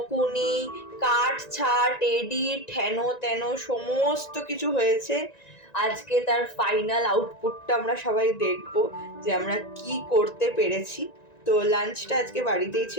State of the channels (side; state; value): right; late; 1.9 ms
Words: কাট ছাট, এডিট, হেন তেন সমস্ত কিছু হয়েছে। আজকে তার ফাইনাল আউটপুটটা আমরা সবাই দেখবো যে আমরা কি করতে পেরেছি। তো লাঞ্চটা আজকে বাড়িতেই